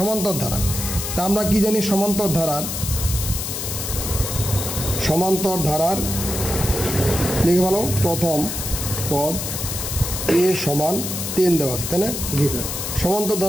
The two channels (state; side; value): noise; left; hiss, 4 dB below the sound